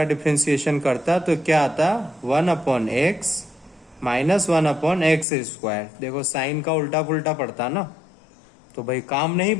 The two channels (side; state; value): right; drops out; at 5.2 s